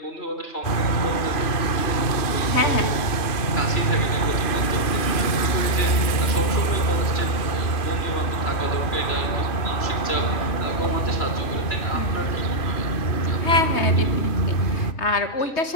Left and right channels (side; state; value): right; late; 2.6 ms